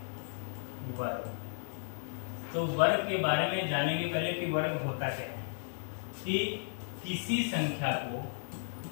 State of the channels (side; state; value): right; silent; digital silence